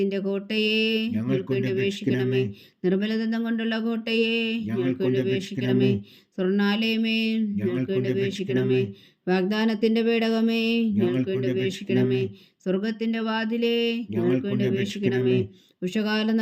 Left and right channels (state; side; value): identical; both; correlation 1.00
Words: കോട്ടയെ, ഞങ്ങൾക്ക് വേണ്ടി അപേക്ഷിക്കണമേ. നിർമ്മലദന്തം കൊണ്ടുള്ള കോട്ടയെ, ഞങ്ങൾക്ക് വേണ്ടി അപേക്ഷിക്കണമേ. സ്വർണ്ണാലയമേ, ഞങ്ങൾക്ക് വേണ്ടി അപേക്ഷിക്കണമേ. വാഗ്ദാനത്തിന്റെ പേടകമേ, ഞങ്ങൾക്ക് വേണ്ടി അപേക്ഷിക്കണമേ. സ്വർഗത്തിന്റെ വാതിലേ, ഞങ്ങൾക്ക് വേണ്ടി അപേക്ഷിക്കണമേ. ഉഷകാല